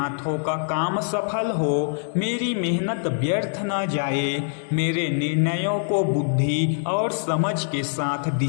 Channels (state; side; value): silent; right; 63 dB below the other